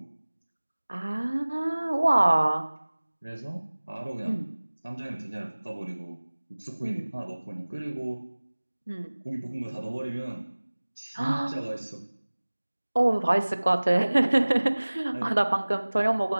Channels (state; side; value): inverted; both; correlation -1.00